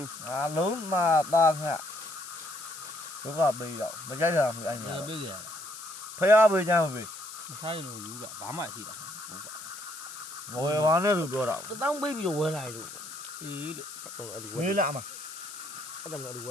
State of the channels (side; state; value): left; noise; hiss, 12 dB below the sound